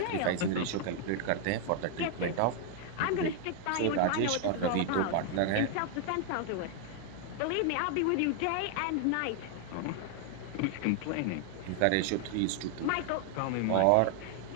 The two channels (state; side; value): different; both; correlation 0.00